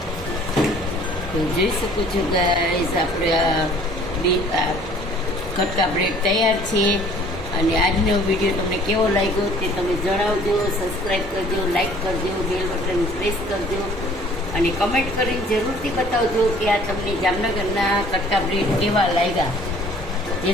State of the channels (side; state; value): both; normal; correlation 0.54